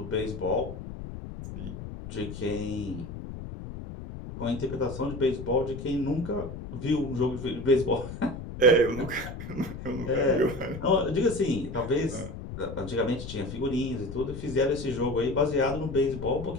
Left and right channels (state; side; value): noise; left; rumble, 9 dB below the sound